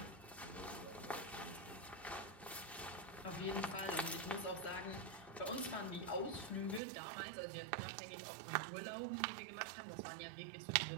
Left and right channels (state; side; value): drops out; left; at 6.8 s